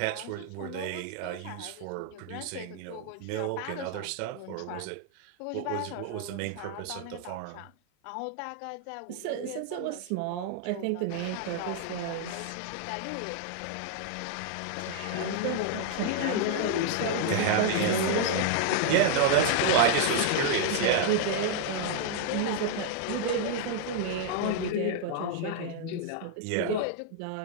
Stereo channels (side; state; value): both; different; correlation 0.00